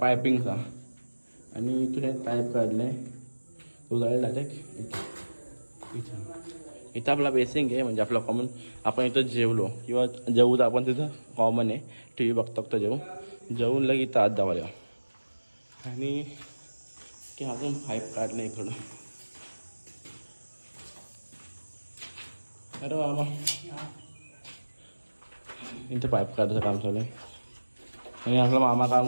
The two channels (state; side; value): inverted; both; correlation -1.00